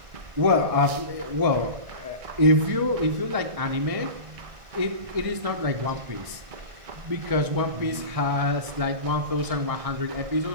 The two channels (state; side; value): late; left; 1.6 ms